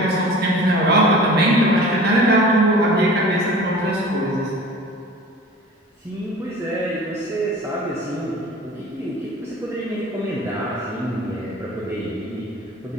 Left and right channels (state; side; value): normal; both; correlation 0.42